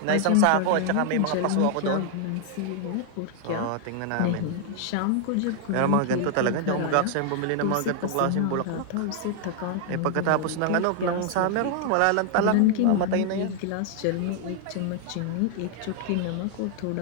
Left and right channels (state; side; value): different; both; correlation 0.00